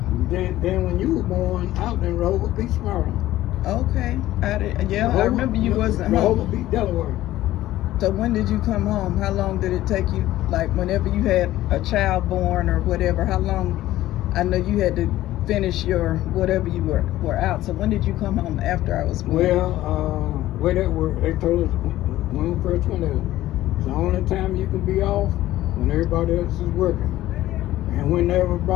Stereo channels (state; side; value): quieter; right; 15.0 dB